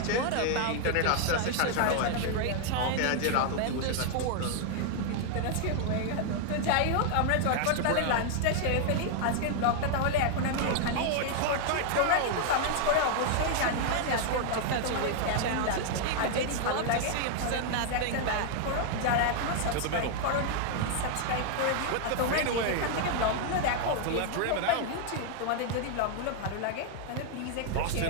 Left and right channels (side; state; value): both; different; correlation 0.00